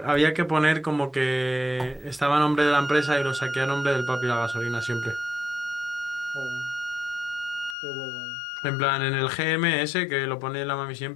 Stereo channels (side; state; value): right; drops out; at 7.8 s